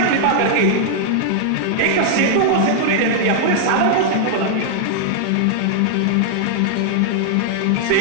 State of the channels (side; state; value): both; different; correlation -0.01